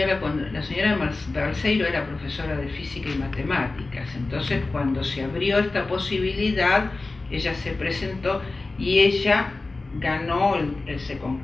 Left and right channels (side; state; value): right; quieter; 3.4 dB